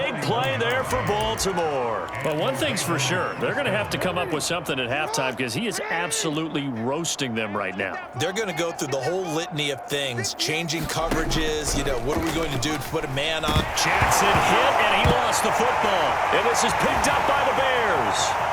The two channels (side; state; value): both; identical; correlation 1.00